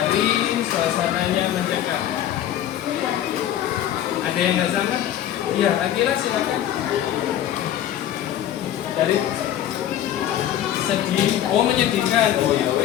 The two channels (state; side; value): quieter; right; 11.5 dB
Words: suasananya mencekam. Ada yang nggak sama? Iya, Akila silakan. Dari sedih, oh menyedihkan. Oh ya